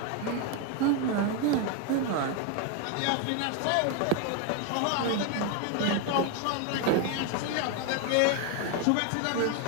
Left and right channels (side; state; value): both; different; correlation 0.01